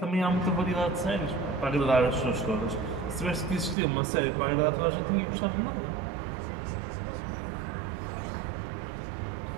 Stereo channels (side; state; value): left; drops out; at 3.8 s